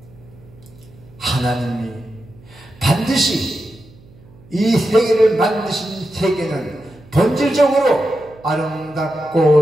하나님이 반드시 이 세계를 만드신 세계는 본질적으로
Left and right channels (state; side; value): noise; right; hum, 25 dB below the sound